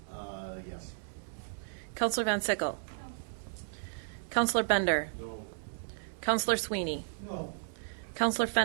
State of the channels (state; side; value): silent; left; digital silence